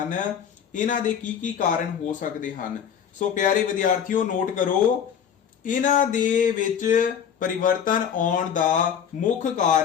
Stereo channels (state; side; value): quieter; right; 8.2 dB